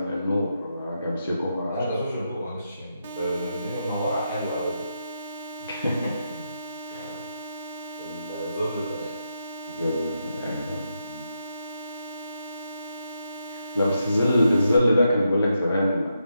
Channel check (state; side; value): inverted; both; correlation -0.83